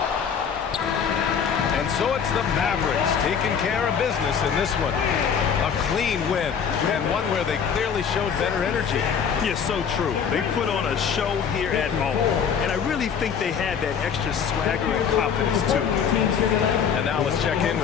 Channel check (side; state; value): right; quieter; 7.1 dB